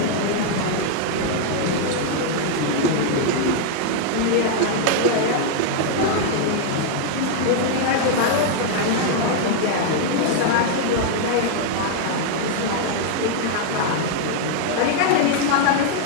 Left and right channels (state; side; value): different; both; correlation 0.00